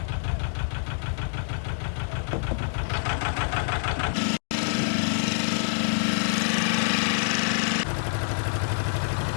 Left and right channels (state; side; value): silent; right; digital silence